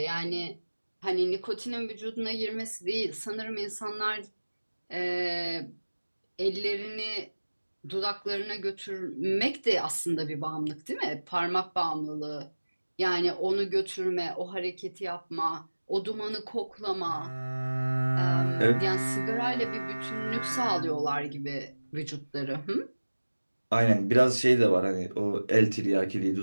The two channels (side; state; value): both; inverted; correlation -1.00